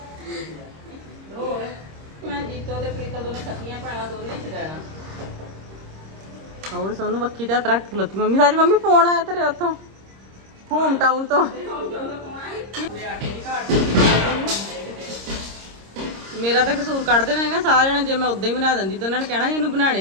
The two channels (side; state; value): left; late; 26 ms